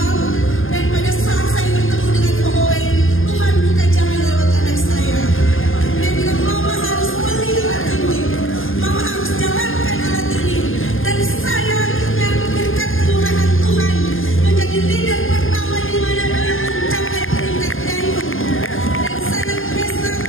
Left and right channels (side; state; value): right; late; 0.59 ms